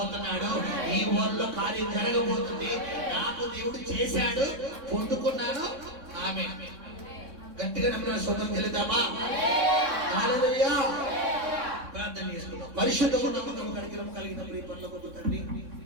ఈ వారంలో కార్యం జరగబోతుంది. నాకు దేవుడు చేశాడు, పొందుకున్నాను. ఆమె గట్టిగా నమ్మిన సొంతం చెల్లిద్దామా? హల్లెలూయా. ప్రార్థన చేసుకుందాం. పరిశుద్ధము నమ్మకము కలిగిన ప్రియ పరలోకపు తండ్రి,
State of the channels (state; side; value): late; left; 3.6 ms